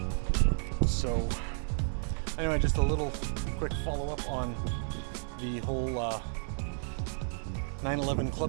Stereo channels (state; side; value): silent; left; 56 dB below the other